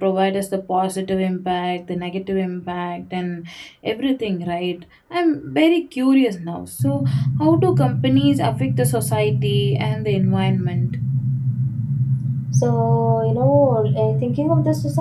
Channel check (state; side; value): identical; both; correlation 1.00